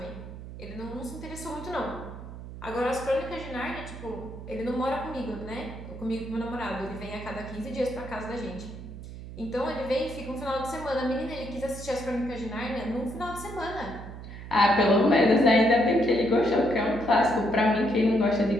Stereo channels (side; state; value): right; noise; hum, 12 dB below the sound